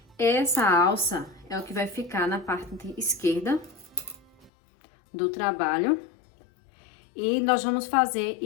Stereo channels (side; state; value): right; drops out; at 4.5 s